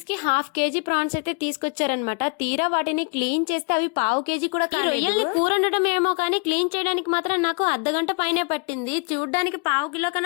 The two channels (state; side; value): quieter; right; 35.1 dB